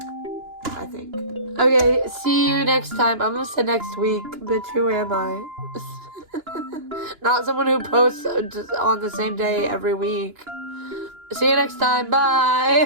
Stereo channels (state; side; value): late; left; 2.9 ms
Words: I think. Okay, see you next time. I'm gonna say next week, but who am I? Not someone who posts just on the same day every week. See you next time.